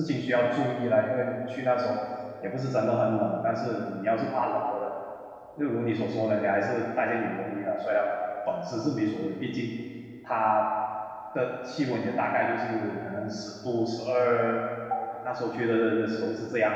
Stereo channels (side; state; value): both; identical; correlation 1.00